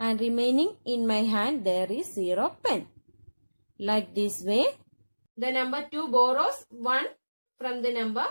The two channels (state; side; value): inverted; both; correlation -1.00